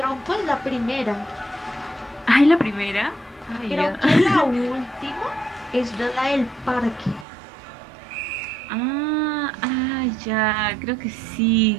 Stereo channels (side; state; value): left; drops out; at 7.2 s